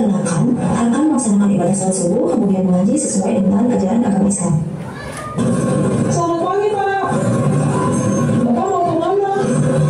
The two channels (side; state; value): both; identical; correlation 1.00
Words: akan melaksanakan ibadah salat subuh kemudian mengaji sesuai dengan ajaran agama Islam. Selamat pagi, Pak. Bapak mau kemana?